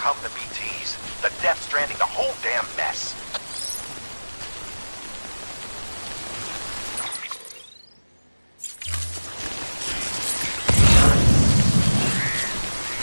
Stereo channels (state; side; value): inverted; both; correlation -1.00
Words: the BTs, the Death Stranding, the whole damn mess.